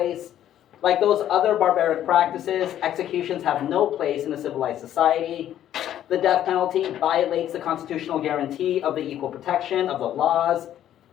Like those other barbaric practices, executions have no place in a civilized society. The death penalty violates the constitutional guarantee of the equal protection of the laws.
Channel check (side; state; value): right; quieter; 11.4 dB